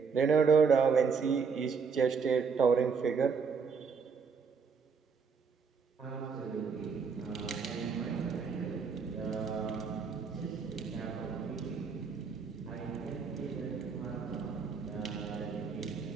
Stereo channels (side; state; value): left; quieter; 5.6 dB